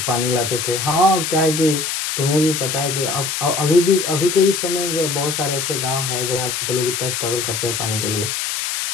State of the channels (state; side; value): noise; left; hiss, 2 dB below the sound